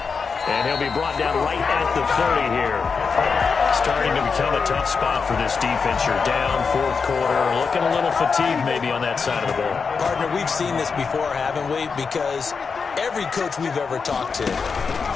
And he'll be brought down right at the 30 here. Starting to become a tough spot for this defense. You're down 4th quarter. Looking a little fatigued maybe on that side of the ball. Partner, we've seen this before, haven't we? Because every coach we've ever talked to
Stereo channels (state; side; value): quieter; right; 5.3 dB